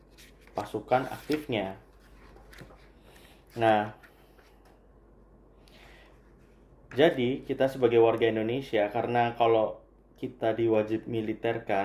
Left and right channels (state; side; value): identical; both; correlation 1.00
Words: pasukan aktifnya. Nah, jadi kita sebagai warga Indonesia, karena kalau kita diwajib